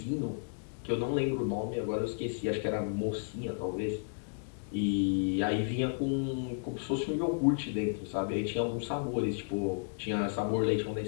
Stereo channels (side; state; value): right; silent; digital silence